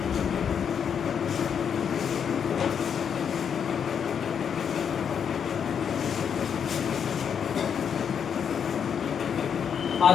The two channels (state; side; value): quieter; right; 7.5 dB